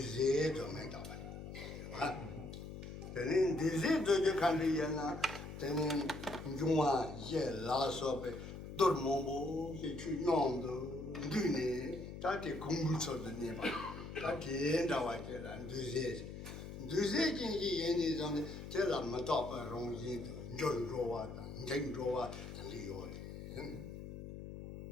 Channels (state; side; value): noise; left; hum, 10 dB below the sound